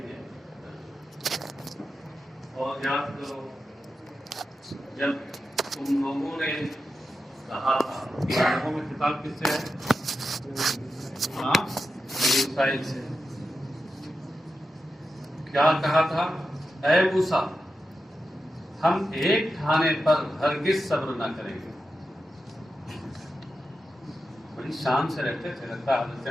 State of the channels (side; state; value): both; normal; correlation 0.90